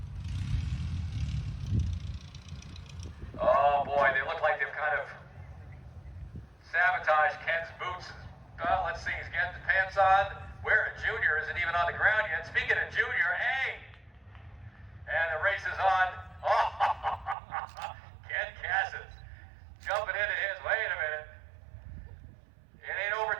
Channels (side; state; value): left; drops out; at 17.4 s